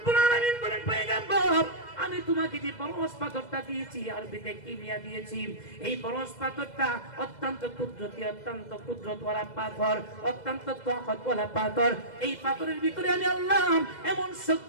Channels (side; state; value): right; late; 2.0 ms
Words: আলামিন বলেন, পয়গম্বর, আমি তোমাকে যে পরশ পাথরটা দিয়েছি, আরবিতে কিমিয়া দিয়েছি, এই পরশ পাথরটা অত্যন্ত কুদরতি, অত্যন্ত কুদরতওয়ালা পাথর, অত্যন্ত তাকতওয়ালা পাথর। এই পাথরের ভিতরে আমি আল্লাহ এমন